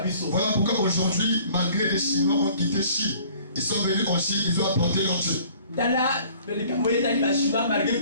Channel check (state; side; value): inverted; both; correlation -0.52